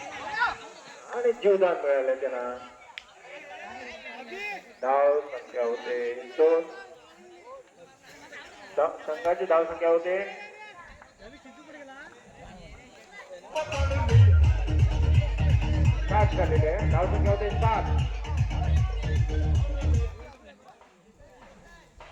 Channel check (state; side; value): identical; both; correlation 1.00